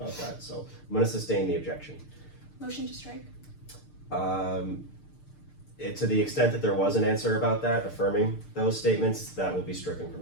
that, so I'm gonna sustain the objection. Motion to strike. To the extent that there was an answer about that, affirming those statements, that will be stricken from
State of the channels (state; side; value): late; right; 6.6 ms